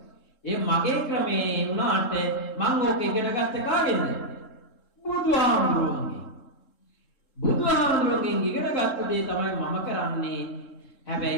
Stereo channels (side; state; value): right; late; 3.7 ms